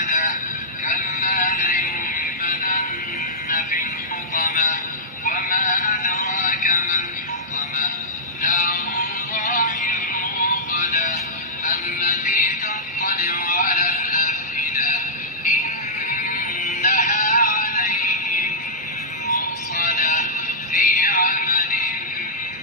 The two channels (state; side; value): normal; both; correlation -0.13